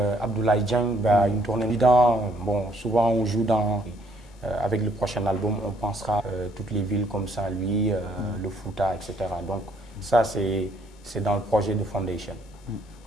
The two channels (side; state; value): both; normal; correlation 0.67